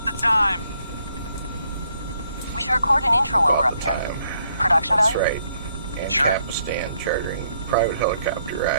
the time. We should record an intro while All we're the up here. time. Production That's value? right. And Sure. Kapistan chartering private helicopter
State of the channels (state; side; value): inverted; both; correlation -0.72